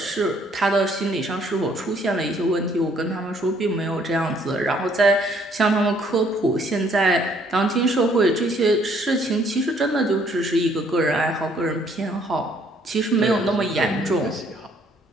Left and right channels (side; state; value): both; normal; correlation 0.64